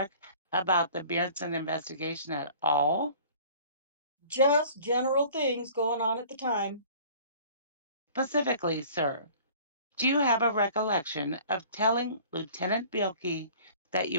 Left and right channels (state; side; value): inverted; both; correlation -0.48